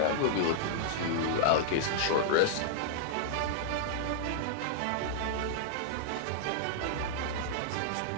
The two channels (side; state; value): both; different; correlation -0.02